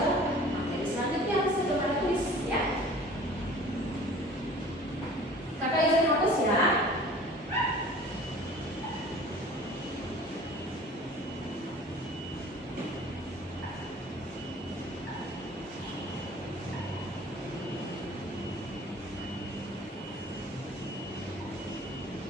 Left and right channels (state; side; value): normal; both; correlation 0.46